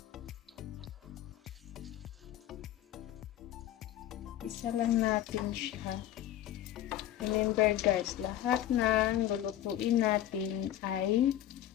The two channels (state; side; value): quieter; right; 12.4 dB